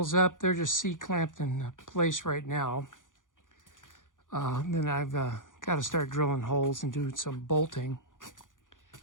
up. They're just C-clamped in place right now. Then I've got to start drilling holes and doing some bolting.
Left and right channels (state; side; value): late; right; 0.88 ms